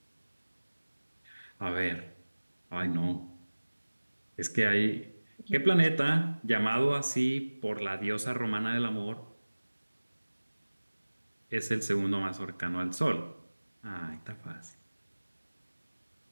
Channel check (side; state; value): both; inverted; correlation -1.00